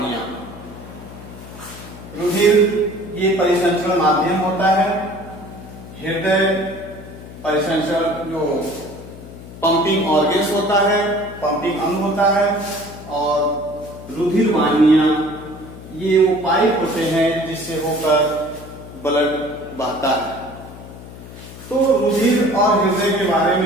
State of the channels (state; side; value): noise; left; hum, 15 dB below the sound